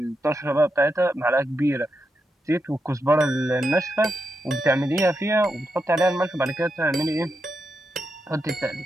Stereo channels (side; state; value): both; normal; correlation 0.85